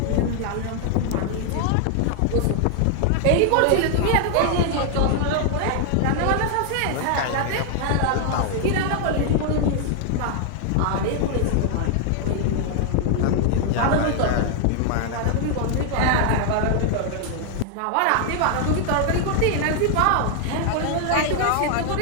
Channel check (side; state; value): both; different; correlation 0.00